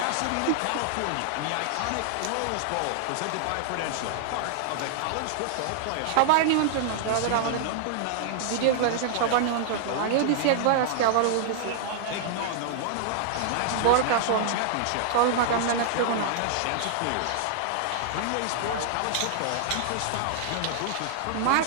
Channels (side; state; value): both; different; correlation -0.01